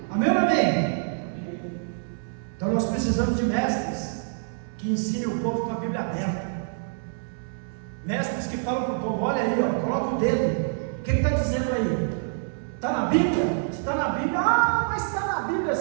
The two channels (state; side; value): silent; left; digital silence